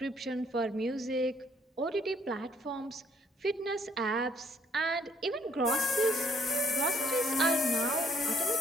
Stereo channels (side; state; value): both; normal; correlation 0.66